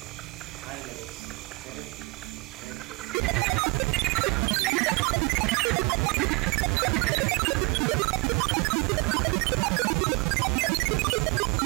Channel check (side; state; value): left; quieter; 26.0 dB